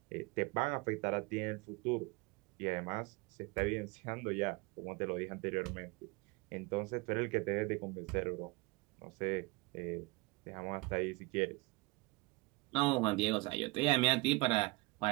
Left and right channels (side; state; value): left; quieter; 24.3 dB